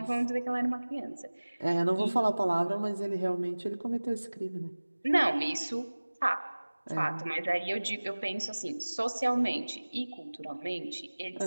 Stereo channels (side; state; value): both; inverted; correlation -1.00